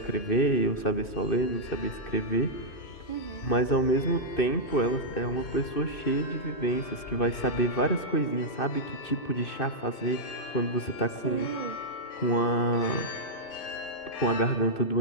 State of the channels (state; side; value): late; right; 2.6 ms